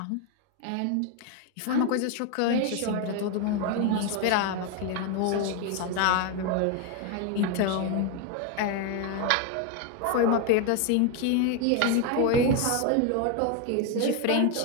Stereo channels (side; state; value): both; different; correlation 0.01